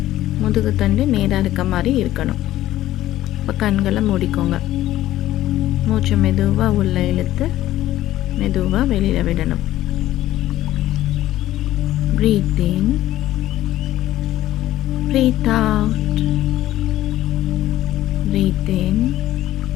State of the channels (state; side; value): quieter; right; 14.3 dB